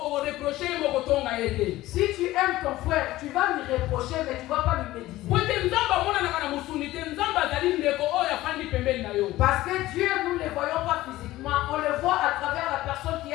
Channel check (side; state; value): right; quieter; 16.6 dB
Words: Si tu aimes ton frère, tu vas lui reprocher, mais tu ne vas pas lui méditer. Parce que Dieu, nous ne le voyons pas physiquement, on le voit à travers la personne qui